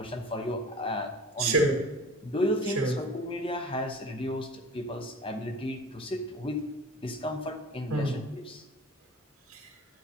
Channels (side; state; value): both; normal; correlation 0.40